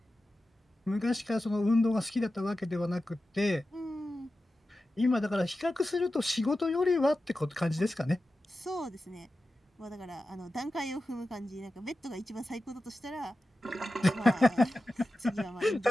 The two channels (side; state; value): both; normal; correlation 0.93